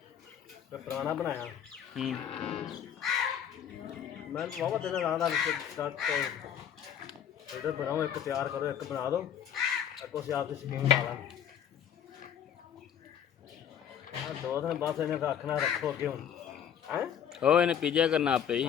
ਤੇ ਪੁਰਾਣਾ ਬਣਾਇਆ ਮੈਂ ਵਾਵਾ ਦਿਨ ਰਾਤ ਦਾ ਸਟਾਰਟ ਇਹਦਾ ਬਣਾਓ ਇੱਕ ਤਿਆਰ ਕਰੋ ਇੱਕ ਬਣਾ ਦਿਓ ਅੱਗੋਂ ਅਸੀਂ ਆਪਦੀ ਸਕੀਮ ਲਾ ਲਾਂਗੇ ਆ 2 ਦਿਨ ਬਾਅਦ ਇਹਨੇ ਰੱਖਣਾ ਰੱਖੋ ਅੱਗੇ ਹੁਣ ਹੈ ओ इन्हें पिज्जा करना आपे ही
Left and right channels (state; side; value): quieter; right; 9.0 dB